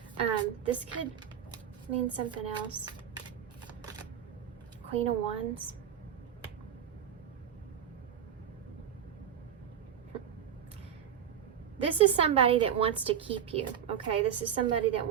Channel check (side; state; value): left; quieter; 8.9 dB